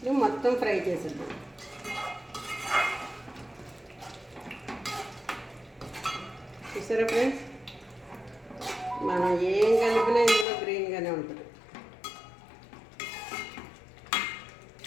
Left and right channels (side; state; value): right; drops out; at 10.5 s